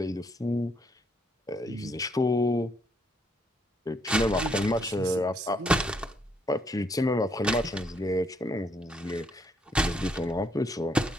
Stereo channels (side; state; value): both; normal; correlation 0.71